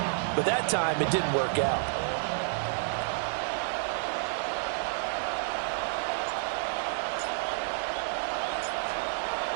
but that time it didn't work out.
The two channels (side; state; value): left; silent; 58 dB below the other